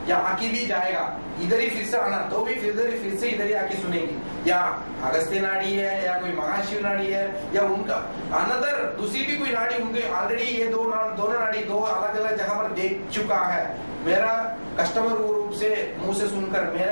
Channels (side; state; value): both; inverted; correlation -1.00